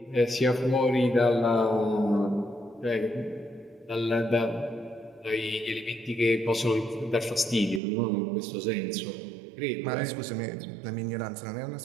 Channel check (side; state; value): left; drops out; at 7.8 s